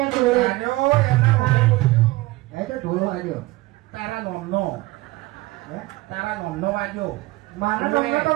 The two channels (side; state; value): left; quieter; 20.0 dB